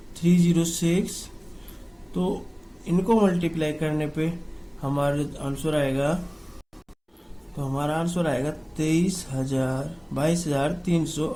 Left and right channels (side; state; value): both; identical; correlation 1.00